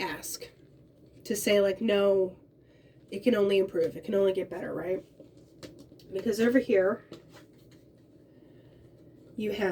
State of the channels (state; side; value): identical; both; correlation 1.00